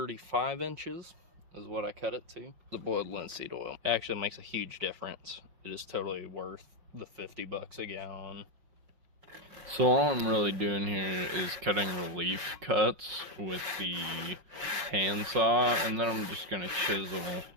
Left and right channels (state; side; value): late; left; 5.5 ms